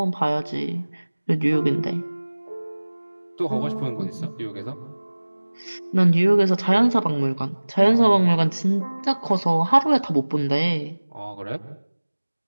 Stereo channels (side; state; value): both; inverted; correlation -1.00